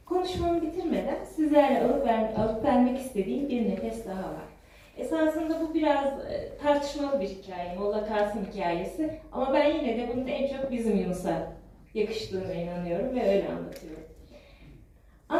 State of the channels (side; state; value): both; identical; correlation 1.00